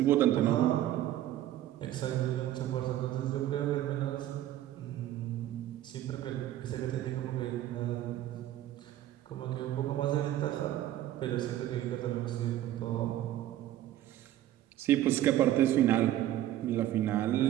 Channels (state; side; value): quieter; left; 13.2 dB